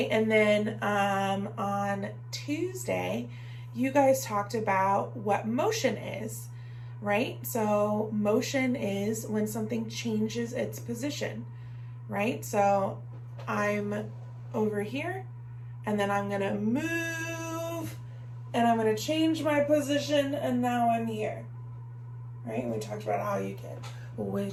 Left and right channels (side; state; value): both; identical; correlation 1.00